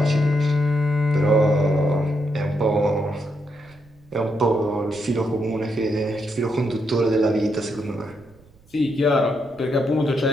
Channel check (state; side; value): noise; right; rumble, 29 dB below the sound